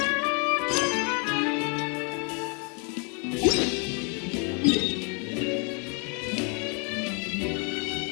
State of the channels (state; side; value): quieter; right; 35.5 dB